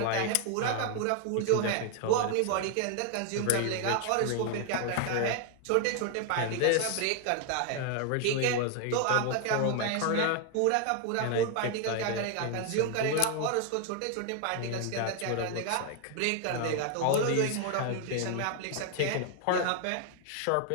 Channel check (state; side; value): different; both; correlation 0.00